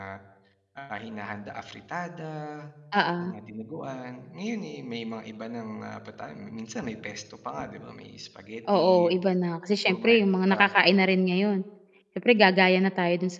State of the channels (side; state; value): both; identical; correlation 1.00